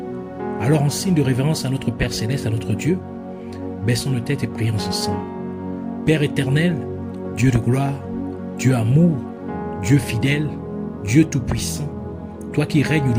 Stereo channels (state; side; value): identical; both; correlation 1.00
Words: Alors, en signe de révérence à notre Père Céleste, à notre Dieu, baissons nos têtes et prions ensemble. Père éternel, Dieu de gloire, Dieu amour, Dieu fidèle, Dieu tout-puissant, toi qui règnes